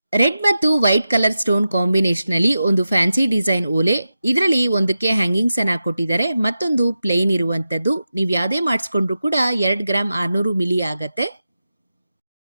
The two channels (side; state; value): both; inverted; correlation -0.91